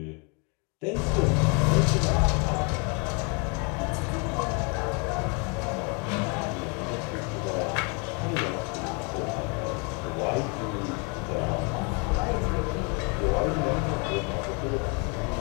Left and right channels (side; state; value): right; quieter; 33.6 dB